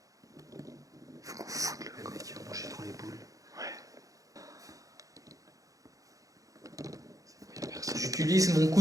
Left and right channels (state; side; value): late; left; 0.17 ms